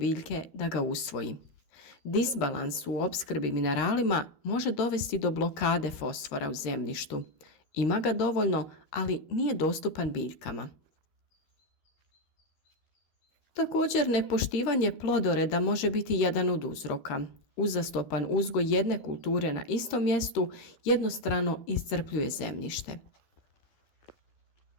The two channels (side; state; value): right; late; 13 ms